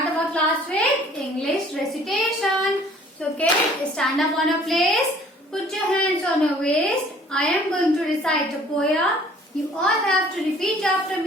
our class with English recitation. So kids, stand up on a place, put your hands on your waist. I am going to recite a poem. You all have to repeat after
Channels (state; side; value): normal; both; correlation 0.54